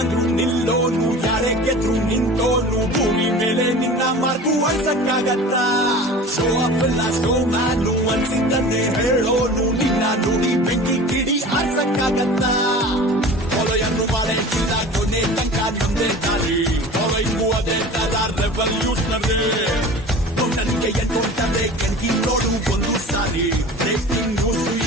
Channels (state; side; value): normal; both; correlation 0.38